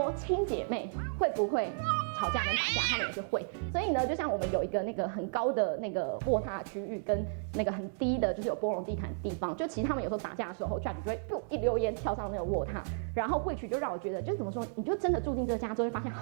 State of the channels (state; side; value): silent; left; digital silence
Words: 亲姐妹会不会吵架跟打架？他们也是会。所以呢，就像我们有一个那个很高的那个卧榻区域，跟那个很低的，就是有波龙地毯的地方，就其实他们有时候打架的时候，judge 就会一溜烟跳上那个卧榻，然后which就让我觉得，就是怎么说，你就真的住进这家之后，会发现